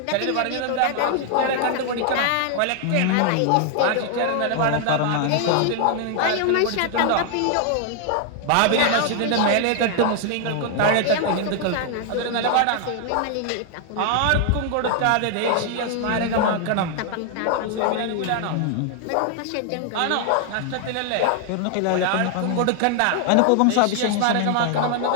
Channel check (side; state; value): both; different; correlation 0.00